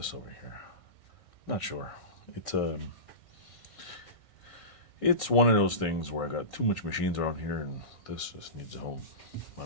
over here. Not sure. It's one of those things where I got too much machines around here, and this just needs a home.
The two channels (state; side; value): late; right; 1.6 ms